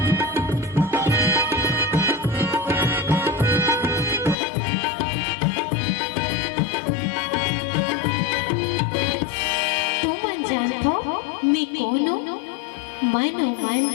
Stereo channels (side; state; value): right; drops out; at 4.4 s